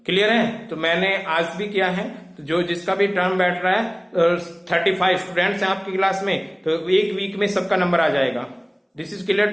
क्लियर है? तो मैंने आज भी किया है, तो तो जो जिसका भी टर्म बैठ रहा है 35 स्टूडेंट्स हैं आपकी क्लास में, तो एक वीक में सबका नंबर आ जाएगा। This is clear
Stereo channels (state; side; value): identical; both; correlation 1.00